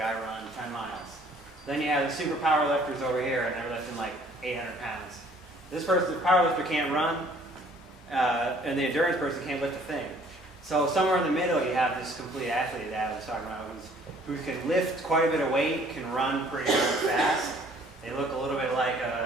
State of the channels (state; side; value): normal; both; correlation 0.57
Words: I run 10 miles. Then you have the super power lifters over here, and they're lifting like 800 pounds. This person, the power lifter, can't run, and the endurance person can't lift a thing. So somewhere in the middle, you have this complete athlete that I was talking about, who can lift quite a bit of weight, can run pretty darn fast. They look a little bit like